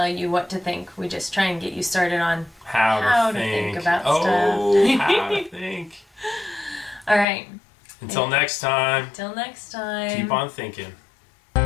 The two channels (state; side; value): drops out; right; at 7.2 s